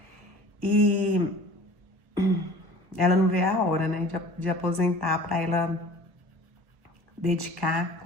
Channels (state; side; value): late; left; 1.1 ms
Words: E ela não vê a hora, né, de aposentar para ela dedicar